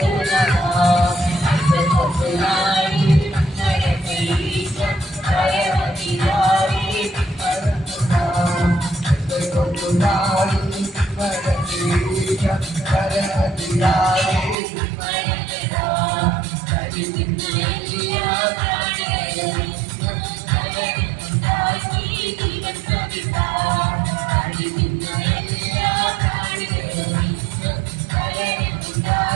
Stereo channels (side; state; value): left; drops out; at 14.6 s